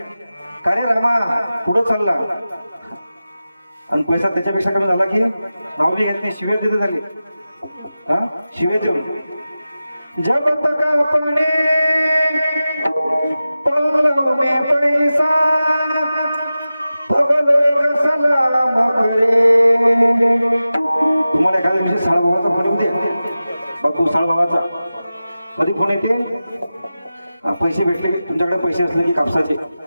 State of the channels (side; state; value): both; inverted; correlation -0.94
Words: का रे रामा पुढं चालला आणि पैसा त्याच्यापेक्षा कमी झाला की नाव बी घेत नाही, शिवे देते झाले. हा शिवे देऊ. जब तक अपने पल्लों में पैसा तब लोग सलाम करे. तुम्हाला एखाद्या दिवशी साळभावाचा फोन येऊ द्या. बापू साळभावाचा कधी फोन येते? पैसे भेटले की तुमच्याकडे पैसे असले की कापसाचे